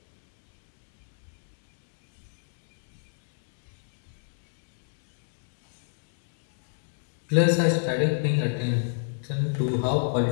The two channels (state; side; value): silent; right; digital silence